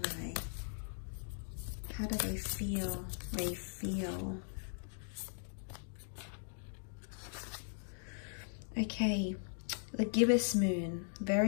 How do they feel? They feel. Okay, the gibbous moon,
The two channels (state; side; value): silent; right; digital silence